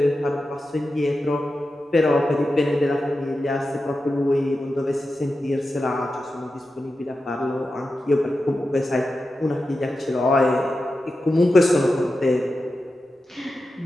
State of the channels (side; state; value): both; normal; correlation 0.91